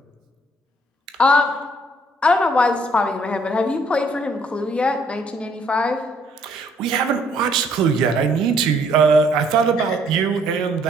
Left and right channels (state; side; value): normal; both; correlation 0.65